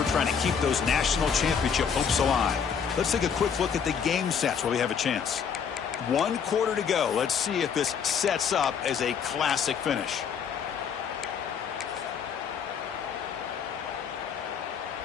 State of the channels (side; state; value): right; quieter; 7.0 dB